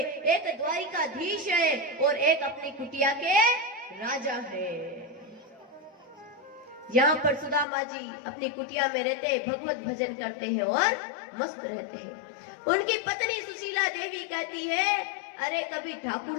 एक द्वारिकाधीश है और एक अपनी कुटिया के राजा है। यहाँ पर सुदामा जी अपनी कुटिया में रहते हैं, भगवत भजन करते हैं और मस्त रहते हैं। उनकी पत्नी सुशीला देवी कहती है, अरे कभी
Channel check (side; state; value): right; drops out; at 7.7 s